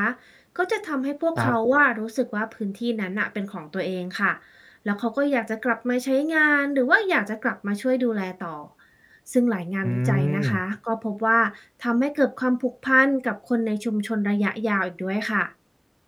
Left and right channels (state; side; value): identical; both; correlation 1.00